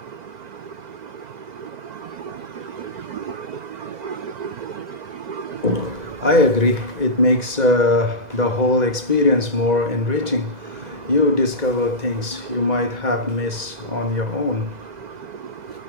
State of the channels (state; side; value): late; left; 2.0 ms